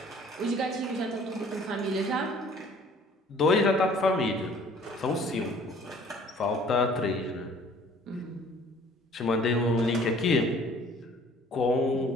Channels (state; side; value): normal; both; correlation 0.54